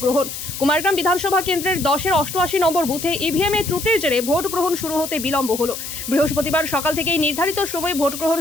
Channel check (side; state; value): left; noise; hiss, 8 dB below the sound